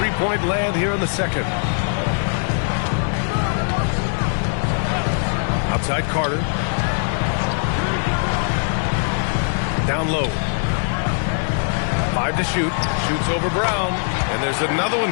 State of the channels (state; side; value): silent; right; digital silence